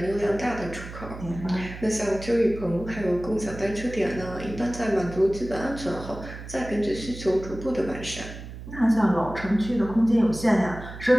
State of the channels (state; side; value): noise; right; hum, 12 dB below the sound